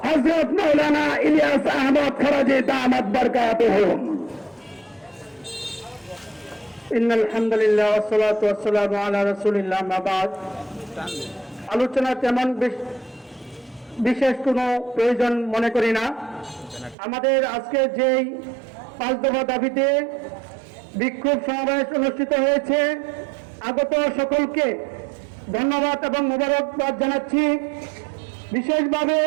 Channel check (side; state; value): left; drops out; at 16.9 s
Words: হযরত মাওলানা ইলিয়াস আহমদ ফরাজি দামাত বরকাতুহুম। ইন্নাল হামদুলিল্লাহ ওয়াসসালাতু ওয়াসসালামু আলা রাসূলিল্লাহ মা বাদ। আলোচনা তেমন বিশেষ কোনো প্রয়োজন মনে করি না। আমাদের আজকে যেই 5 দফা দাবিতে বিক্ষোভ সমাবেশ অনুষ্ঠিত হয়েছে, আগত সকলকে ধন্যবাদ এবং মোবারকবাদ জানাচ্ছি। বিশেষভাবে